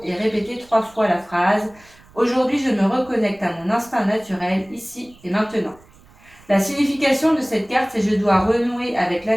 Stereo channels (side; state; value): right; noise; rumble, 27 dB below the sound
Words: et répéter 3 fois la phrase « Aujourd'hui, je me reconnecte à mon instinct naturel, ici et maintenant ». La signification de cette carte, c'est « Je dois renouer avec